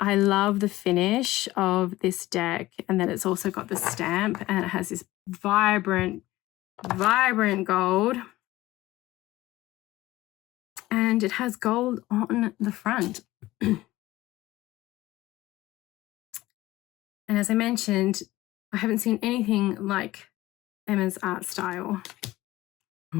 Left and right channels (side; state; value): right; quieter; 17.2 dB